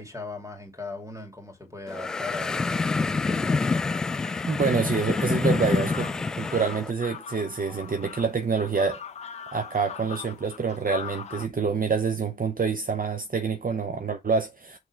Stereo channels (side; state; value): both; normal; correlation 0.54